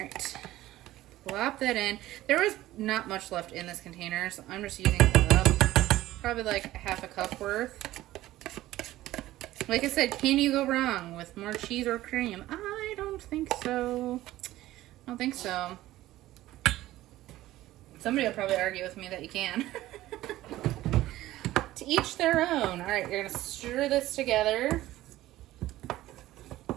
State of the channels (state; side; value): quieter; left; 15.6 dB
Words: Plop that in. There was not much left in this container, so I'm just using probably like half a cup worth. Like I said, can you go wrong with more cheese or cream? I don't don't think so. I don't think so. Somebody will probably argue with me that you can. To each their own. All right, you're gonna stir this together.